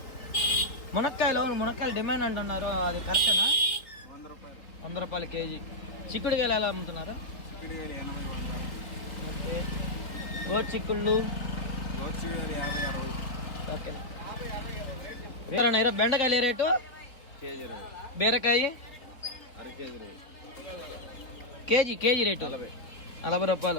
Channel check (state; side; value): late; right; 3.7 ms